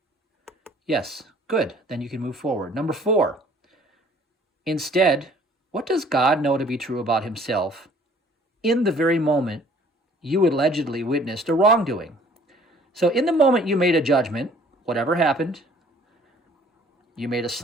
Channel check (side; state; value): both; normal; correlation 0.55